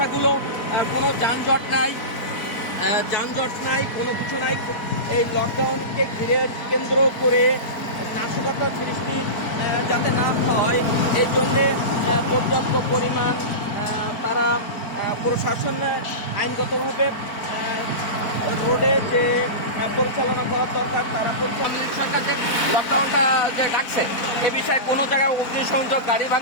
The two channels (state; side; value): late; right; 4.5 ms